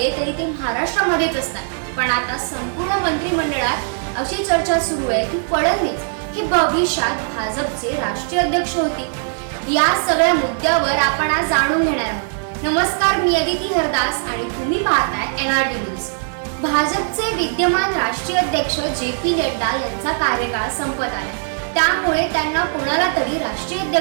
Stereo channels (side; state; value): left; silent; digital silence